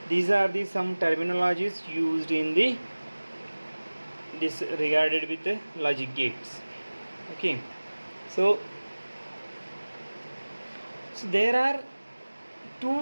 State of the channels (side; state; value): both; inverted; correlation -1.00